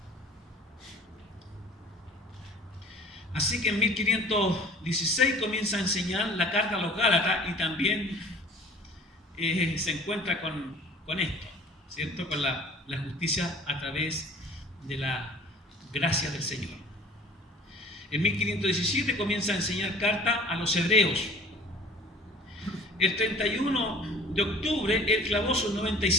Así que en 1516 comienza a enseñar la carta a los Gálatas y también se encuentra con esto, ¿cierto? Con la justicia a través de la gracia del Señor. En 1517 comienza a enseñar carta a los hebreos. El 31 de octubre él clavó sus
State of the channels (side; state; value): both; normal; correlation 0.48